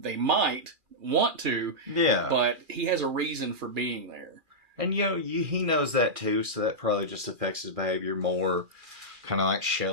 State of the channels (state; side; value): late; left; 2.4 ms